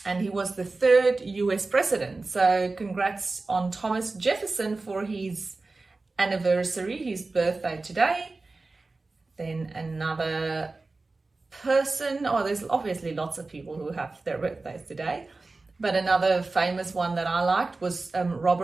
And he was the third US president. So congrats on Thomas Jefferson for his anniversary, his birthday today. Then another person, there's obviously lots of people who have their birthdays today, but another famous one that I liked was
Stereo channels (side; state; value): left; quieter; 3.5 dB